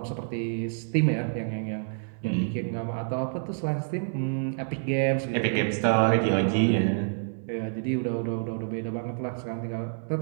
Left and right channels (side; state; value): left; silent; digital silence